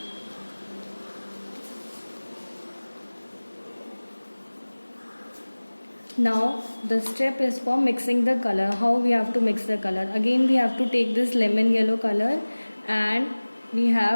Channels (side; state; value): both; inverted; correlation -1.00